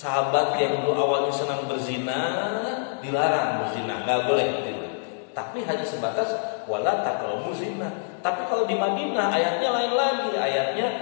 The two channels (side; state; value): right; silent; digital silence